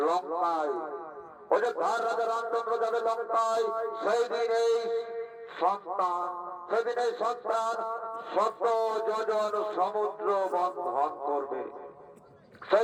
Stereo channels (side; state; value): both; identical; correlation 1.00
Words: অযোধ্যার রাজা রামচন্দ্র যাবে লঙ্কায়। সেই দিন এই সন্তান, সেদিন এই সন্তান 100 যোজন সমুদ্র বন্ধন করবে।